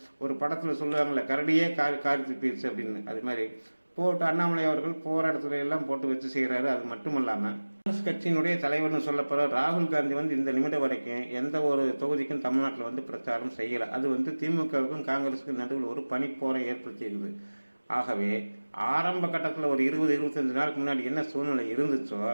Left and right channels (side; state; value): both; inverted; correlation -1.00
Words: ஒரு படத்தில் சொல்லுவாங்களே கரடியே காரி துப்பிடுச்சு அப்படின்னு, அது மாதிரி போட்டு அண்ணாமலை அவர்கள் போகிற இடத்துல எல்லாம் போட்டு வச்சு செய்கிறாரு. அது மட்டும் இல்லாமல் காங்கிரஸ் கட்சியினுடைய தலைவர்னு சொல்லப்படுற ராகுல் காந்தி வந்து இந்த நிமிடம் வரைக்கும் எந்த ஒரு தொகுதிக்கும் தமிழ்நாட்டில் வந்து பிரச்சாரம் செய்யலை. அது வந்து திமுகவுக்கும் காங்கிரஸுக்கும் நடுவில் ஒரு பனிப்போரை ஏற்படுத்தியிருக்குது. ஆகவே ஆரம்ப கட்டத்தில் ஒரு 20-25 நாளுக்கு முன்னாடி என்ன சூழ்நிலை இருந்துச்சோ,